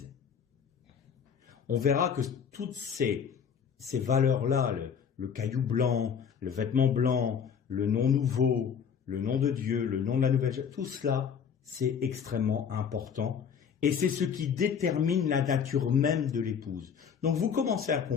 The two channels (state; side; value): quieter; right; 7.2 dB